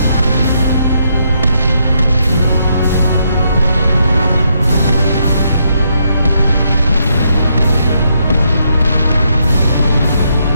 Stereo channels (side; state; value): both; inverted; correlation -0.77